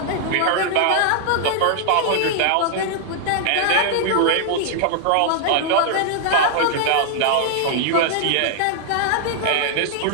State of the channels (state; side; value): different; both; correlation -0.01